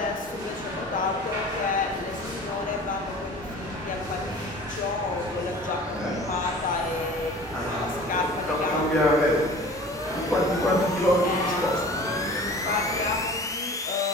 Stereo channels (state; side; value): normal; both; correlation 0.42